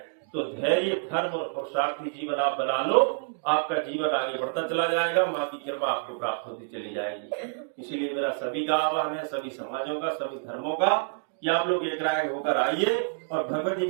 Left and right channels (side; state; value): left; silent; digital silence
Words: तो धैर्य, धर्म और पुरुषार्थी जीवन आप बना लो, आपका जीवन आगे बढ़ता चला जाएगा, माँ की कृपा आपको प्राप्त होती चली जाएगी। इसीलिए मेरा सभी का आह्वान है, सभी समाजों का, सभी धर्मों का, कि आप लोग एक राय होकर आइए और भगवती